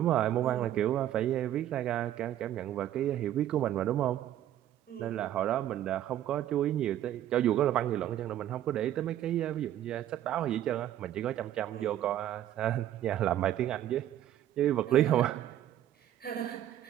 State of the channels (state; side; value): quieter; left; 12.0 dB